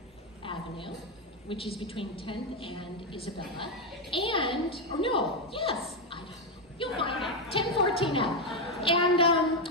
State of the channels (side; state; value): both; normal; correlation 0.06